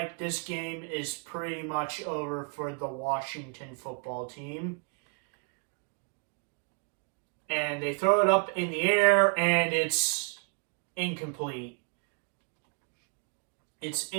this game is pretty much over for the Washington football team. And they throw it up in the air, and it's incomplete. It's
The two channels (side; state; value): left; quieter; 39.6 dB